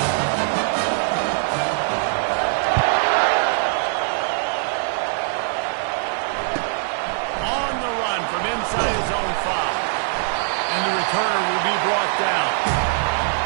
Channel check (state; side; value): silent; left; 64 dB below the other